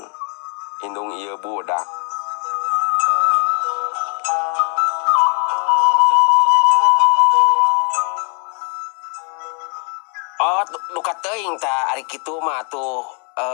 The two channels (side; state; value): right; quieter; 40.0 dB